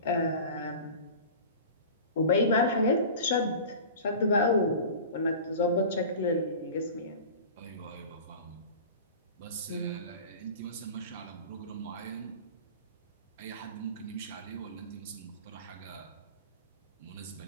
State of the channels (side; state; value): both; inverted; correlation -0.36